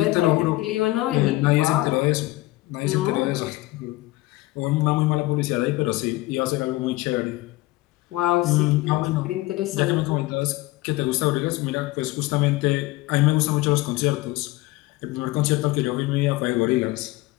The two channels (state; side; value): quieter; right; 19.2 dB